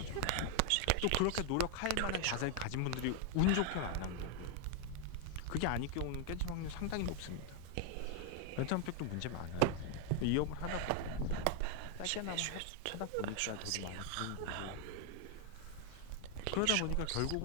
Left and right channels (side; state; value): both; different; correlation 0.00